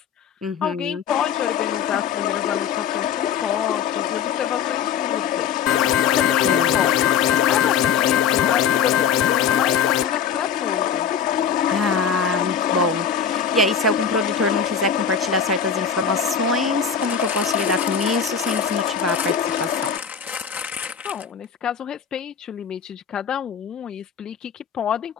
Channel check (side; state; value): right; quieter; 7.3 dB